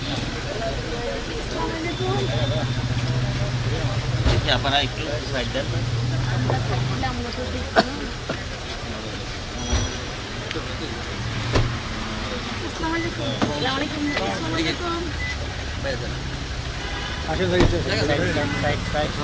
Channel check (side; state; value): both; identical; correlation 1.00